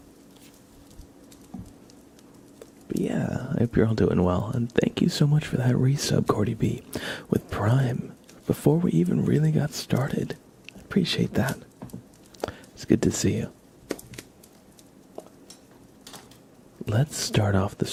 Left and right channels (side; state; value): both; identical; correlation 1.00